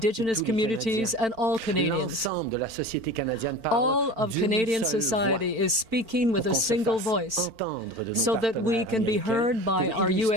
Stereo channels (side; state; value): left; late; 4.5 ms